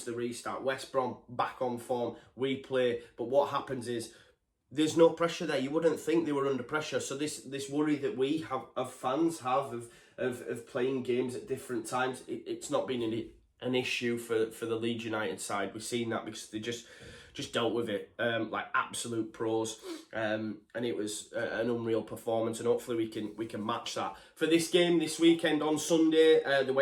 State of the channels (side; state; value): both; identical; correlation 1.00